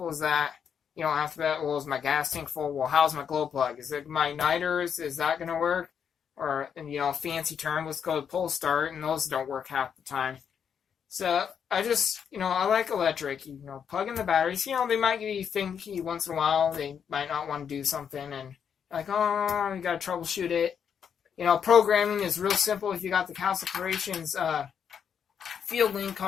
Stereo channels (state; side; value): quieter; right; 7.6 dB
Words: as that. You don't have to bet, well, is my gas tank full? Well, how's my glow plug? Is it my niters? Is that going to work? Or, fancy term, let's go to pull start, and those don't work half the time. So, I just, I like electric. Plug in the batteries. They might give you thinky once in a while. They might not want to do something, and you got to troubleshoot it. Programming is real simple. If you got the House of Creations Field Link